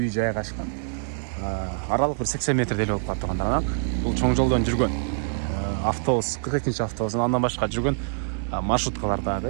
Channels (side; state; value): left; silent; digital silence